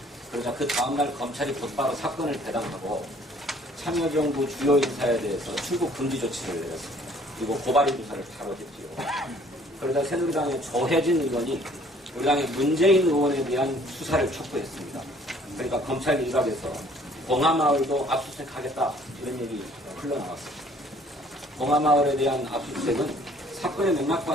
그러자 그 다음날 검찰이 곧바로 사건을 배당하고 참여정부 주요 인사에 대해서 출국 금지 조치를 내렸습니다. 그리고 고발인 조사를 바로 했지요. 그러자 새누리당의 조혜진 의원이 우리 당의 문재인 의원에 대한 수사를 촉구했습니다. 그러니까 검찰 일각에서 봉하마을도 압수수색하겠다 이런 얘기 흘러나왔습니다. 봉하마을에 대한 압수수색은 사건의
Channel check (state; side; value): normal; both; correlation 0.57